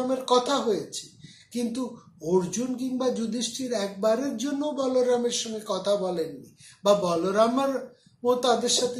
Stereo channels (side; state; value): both; identical; correlation 1.00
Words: কথা হয়েছে, কিন্তু অর্জুন কিংবা যুধিষ্ঠির একবারের জন্য বলরামের সঙ্গে কথা বলেননি, বা বলরামের ও তাদের সাথে